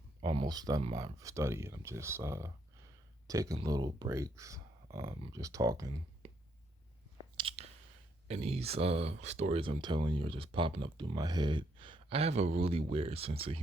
almost done my study, I'm just taking little breaks, just talking. And these stories I'm telling you are just popping up through my head. I have a really weird sense of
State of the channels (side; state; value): both; normal; correlation 0.74